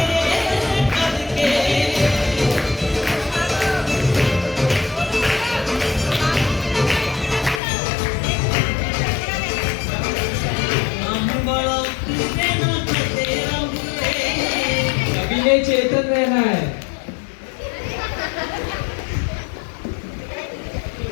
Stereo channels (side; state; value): right; drops out; at 7.6 s